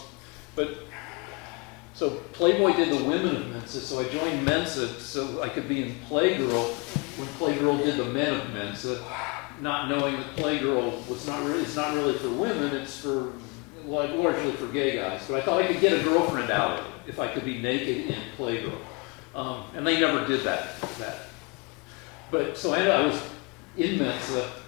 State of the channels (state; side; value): quieter; right; 29.5 dB